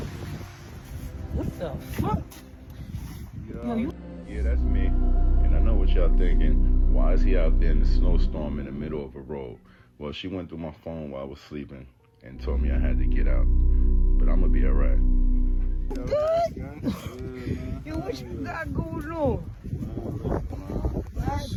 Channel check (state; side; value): identical; both; correlation 1.00